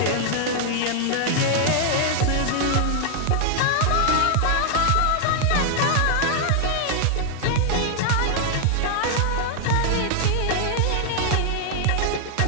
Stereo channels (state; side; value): different; both; correlation 0.00